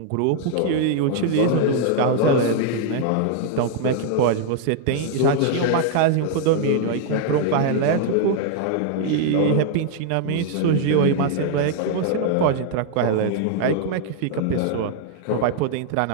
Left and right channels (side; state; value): both; different; correlation 0.00